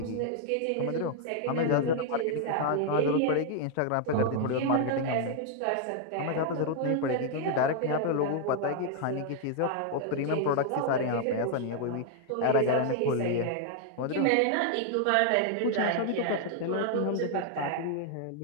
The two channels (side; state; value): both; different; correlation 0.00